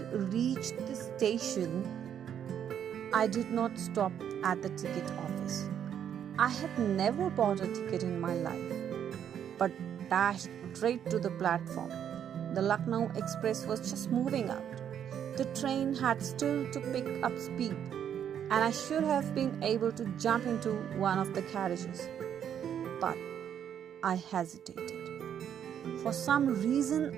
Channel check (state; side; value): quieter; left; 9.1 dB